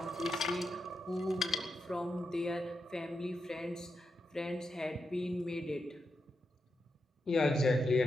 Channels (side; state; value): both; normal; correlation 0.86